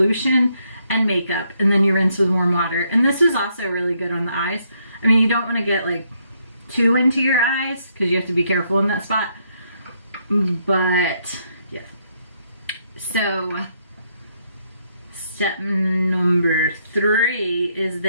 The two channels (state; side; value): inverted; both; correlation -0.74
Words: and makeup. And then you rinse with warm water. And this is also really good on the eyes. I mean, you don't want to get like too into your eyes because you have to be careful in that spot. But yeah. So step number 3 is